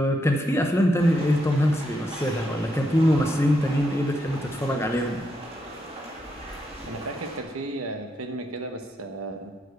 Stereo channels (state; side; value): normal; both; correlation 0.80